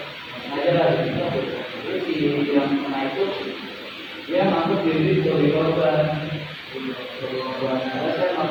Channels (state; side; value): identical; both; correlation 1.00